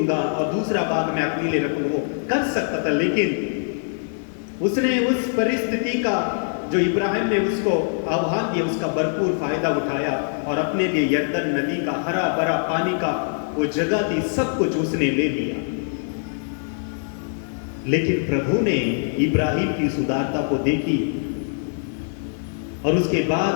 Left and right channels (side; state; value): right; silent; digital silence